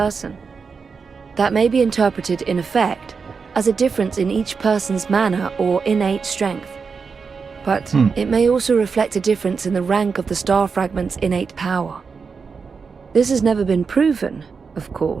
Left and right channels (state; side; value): quieter; left; 5.3 dB